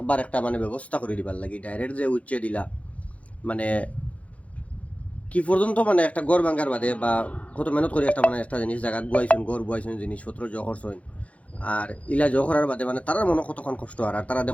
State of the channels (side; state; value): right; late; 0.065 ms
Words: একটা মানে ব্যবস্থা করে দিবার লাগি ডাইরেক্ট যে উচ্চে দিলা মানে কি পর্যন্ত মানে একটা গড় ভাঙ্গার বাদে বা কত মেহনত করে একটা মানে একটা জিনিস জায়গা গুয়াইছেন গড় গুয়াইছেন জিনিসপত্র জহর সইন আর ইলা জহরার বাদে মানে তারা মনে কতক্ষণ কষ্ট আর তারা